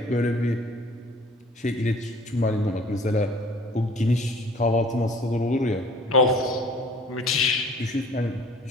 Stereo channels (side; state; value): both; normal; correlation 0.51